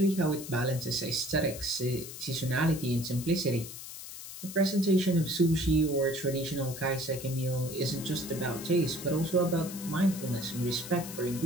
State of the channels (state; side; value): noise; left; hiss, 11 dB below the sound